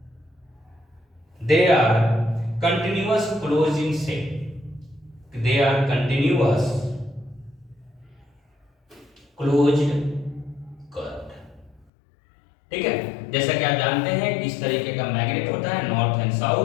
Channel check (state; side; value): drops out; right; at 11.9 s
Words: they are continuous close in shape, they are continuous closed curved. ठीक है, जैसा कि आप जानते हैं कि इस तरीके का मैग्नेट होता है नॉर्थ एंड